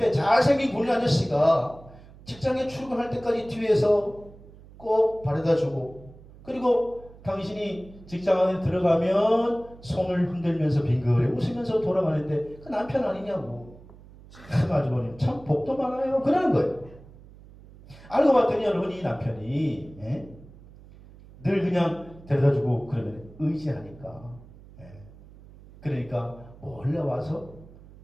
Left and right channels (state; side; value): noise; right; hum, 21 dB below the sound